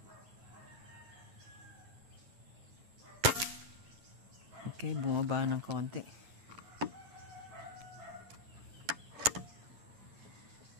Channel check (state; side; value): late; left; 9.9 ms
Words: Okay, bumaba ng konti.